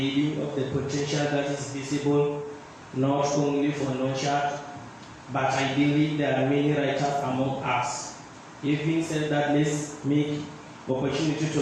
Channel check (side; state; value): both; identical; correlation 1.00